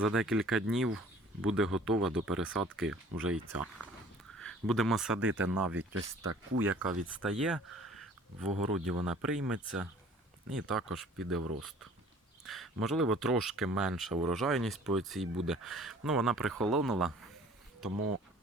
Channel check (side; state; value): both; normal; correlation 0.51